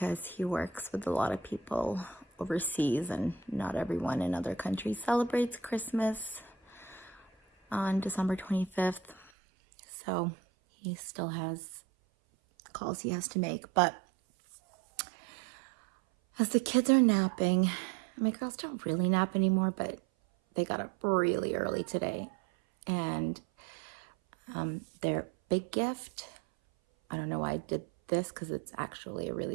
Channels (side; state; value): left; drops out; at 9.3 s